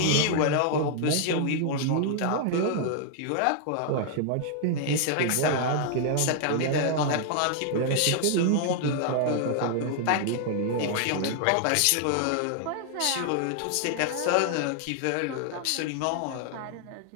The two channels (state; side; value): different; both; correlation 0.00